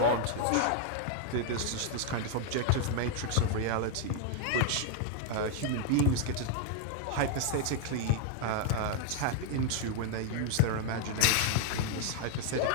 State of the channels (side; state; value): both; different; correlation 0.00